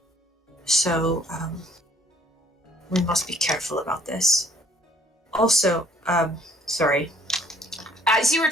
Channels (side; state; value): both; normal; correlation 0.60